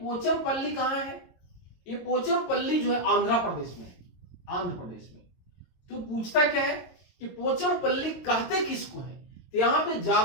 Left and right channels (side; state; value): right; late; 22 ms